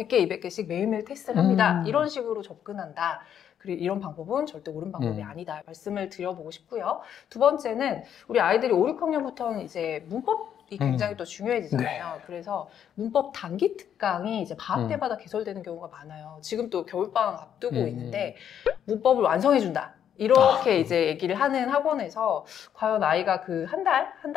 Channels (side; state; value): right; quieter; 9.2 dB